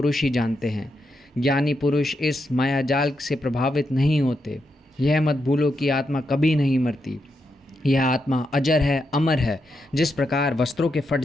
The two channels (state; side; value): normal; both; correlation 0.84